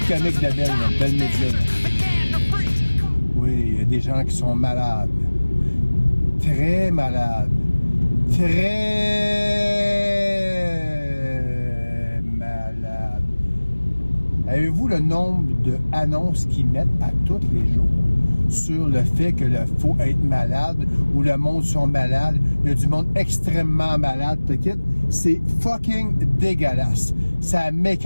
comiques de Belle Média. Oui, il y a des gens qui sont malades. Très malades. Très malades. Avez-vous le nombre d'annonces qu'ils mettent à tous les jours sur le fait qu'il faut être malade ou le monde sont malades? Il y a du monde extrêmement malade, t'inquiète. C'est fucking dégueulasse. Ça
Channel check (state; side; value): inverted; both; correlation -1.00